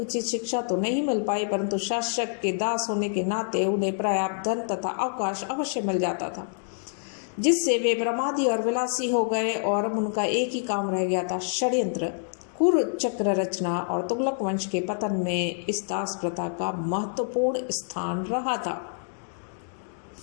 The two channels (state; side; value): silent; right; digital silence